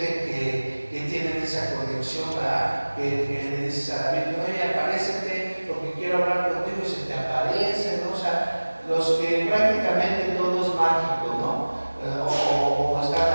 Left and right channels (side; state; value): both; inverted; correlation -1.00